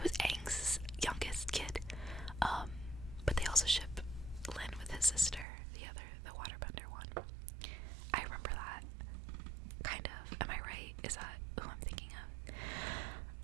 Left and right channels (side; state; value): left; drops out; at 5.5 s